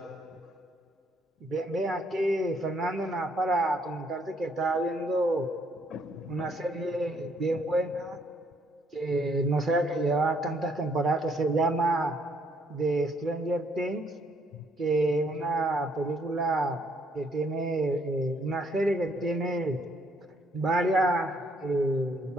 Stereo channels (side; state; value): both; normal; correlation 0.69